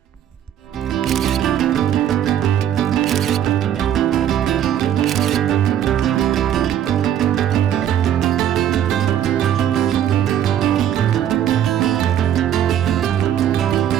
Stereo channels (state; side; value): quieter; left; 10.3 dB